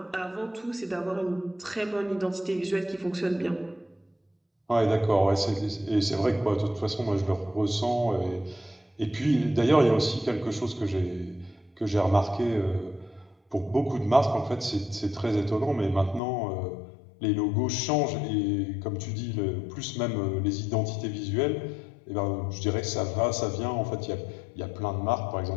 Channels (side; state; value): right; drops out; at 16.2 s